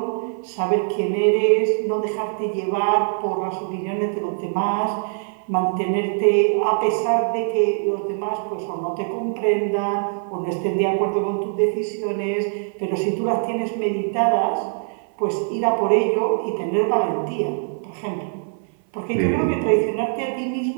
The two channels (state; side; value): silent; left; 57 dB below the other